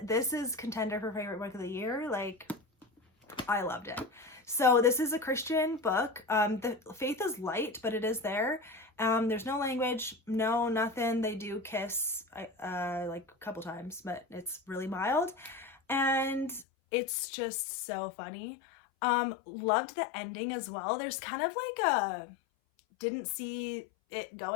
This is contender for favorite book of the year. Like, I loved it. So this is a Christian book. The faith is light, but it is there. There's no language, no nothing. They do kiss like a couple times, but it's really mild, and it's just so funny. Loved the ending as well. There's kind of like a didn't see it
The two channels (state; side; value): drops out; right; at 16.7 s